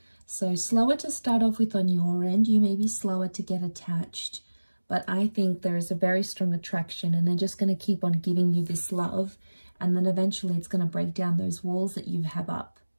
So slower to start off with on your end. You may be slower to get attached, but I think there is a very strong attraction, and they're just going to keep on giving you this love, and then eventually it's going to break down those walls that you have up.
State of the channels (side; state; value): both; inverted; correlation -1.00